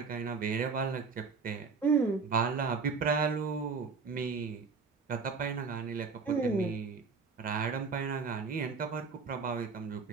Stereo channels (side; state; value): left; quieter; 5.1 dB